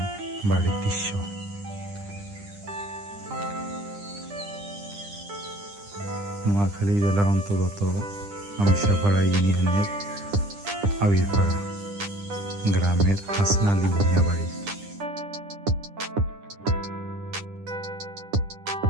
বাড়ির দৃশ্য। নোয়াখালী জেলার অন্তর্গত আমশাপাড়া ইউনিয়নের আবিরপাড়া গ্রামের হাসান আলী ভূঁইয়া বাড়ি।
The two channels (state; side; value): late; left; 9.9 ms